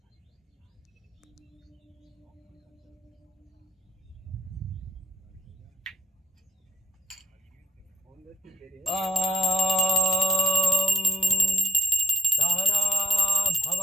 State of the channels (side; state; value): both; normal; correlation 0.65